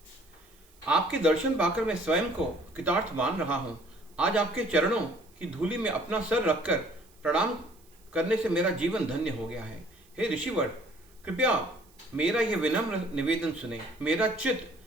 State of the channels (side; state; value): right; noise; hiss, 30 dB below the sound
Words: आपके दर्शन पाकर मैं स्वयं को कृतार्थ मान रहा हूं। आज आपके चरणों की धूलि में अपना सर रखकर प्रणाम करने से मेरा जीवन धन्य हो गया है। हे ऋषिवर, कृपया मेरा यह विनम्र निवेदन सुने। मेरा